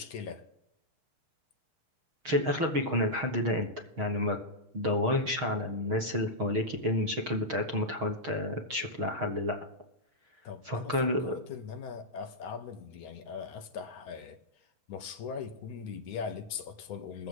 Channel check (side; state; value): left; late; 6.4 ms